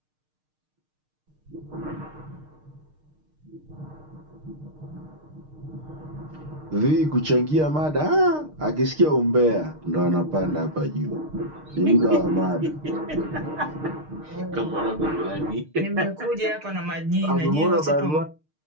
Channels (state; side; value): late; left; 6.5 ms